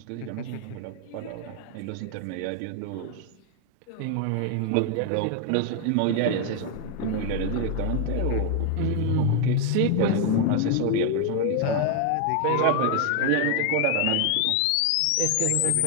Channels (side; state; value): both; different; correlation 0.00